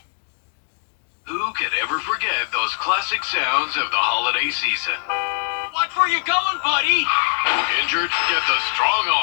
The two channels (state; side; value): silent; right; 58 dB below the other